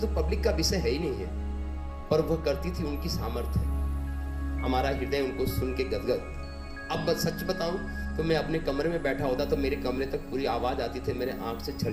पब्लिक का विषय है ही नहीं है, पर वह करती थी, उनकी सामर्थ्य है। हमारा हृदय उनको सुन के गदगद। अब सच बताऊं तो मैं अपने कमरे में बैठा होता तो मेरे कमरे तक पूरी आवाज आती थी, मेरे आंख से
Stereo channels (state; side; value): identical; both; correlation 1.00